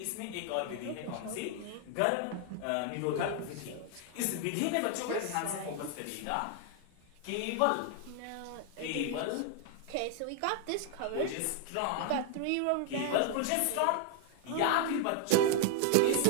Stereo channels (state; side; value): different; both; correlation 0.00